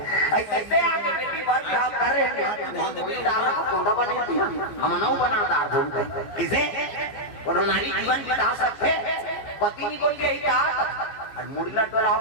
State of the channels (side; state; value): right; late; 14 ms